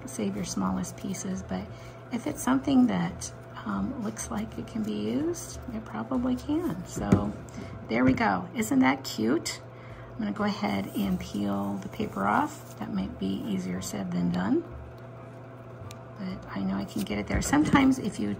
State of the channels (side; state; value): both; identical; correlation 1.00